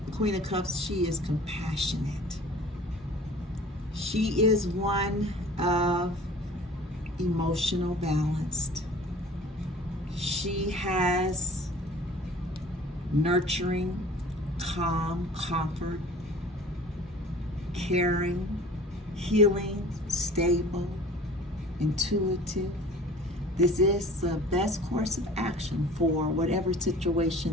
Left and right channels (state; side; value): normal; both; correlation 0.45